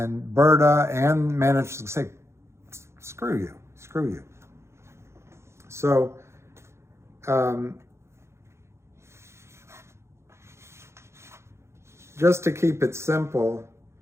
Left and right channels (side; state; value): left; late; 0.13 ms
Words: Berta and managed to say, screw you. So, just to keep it simple,